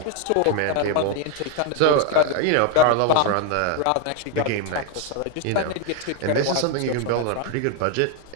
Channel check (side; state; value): both; different; correlation 0.01